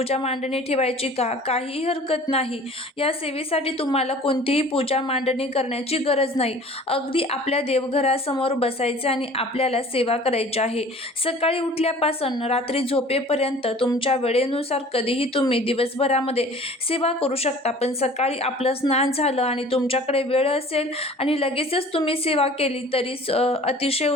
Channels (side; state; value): both; normal; correlation 0.47